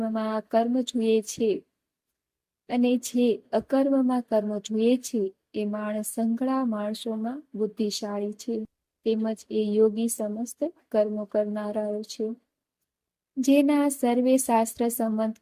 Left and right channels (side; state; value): both; identical; correlation 1.00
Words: કર્મ જુએ છે અને જે અકર્મમાં કર્મ જુએ છે એ માણસ સંઘળા માણસોમાં બુદ્ધિશાળી છે, તેમજ એ યોગી સમસ્ત કર્મો કરનારાઓ છે. જેના સર્વે શાસ્ત્ર સંમત